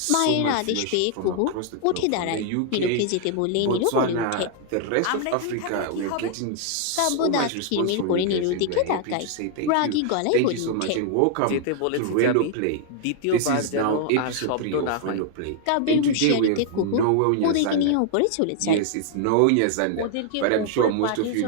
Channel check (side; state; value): both; different; correlation 0.00